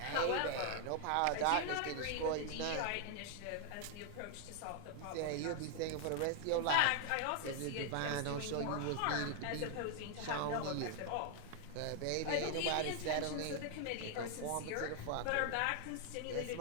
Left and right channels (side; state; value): both; different; correlation 0.00